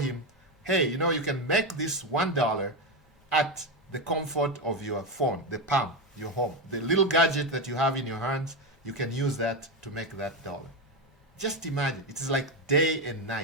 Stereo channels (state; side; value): normal; both; correlation 0.13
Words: hey, you know, you can make this $1 at the comfort of your phone, the palm, your home. The little gadget that you have in your hands, you can use that to make that dollar. Just imagine, it is like day and